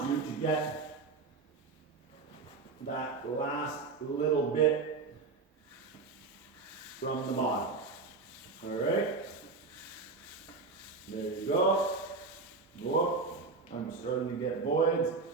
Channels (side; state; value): left; quieter; 4.1 dB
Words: you to get that last little bit from the bottom. All right, there you go. Whoop. I'm starting to get voids.